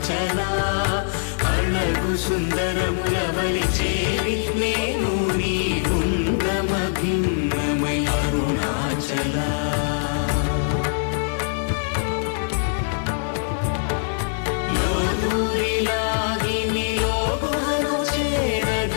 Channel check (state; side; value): silent; right; 64 dB below the other